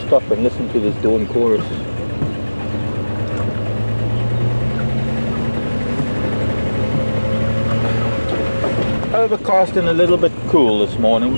stop and listen to this dawn chorus. Overcast and a little bit cool this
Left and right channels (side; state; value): both; inverted; correlation -1.00